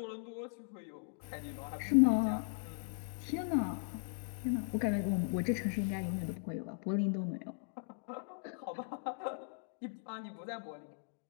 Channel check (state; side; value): silent; right; digital silence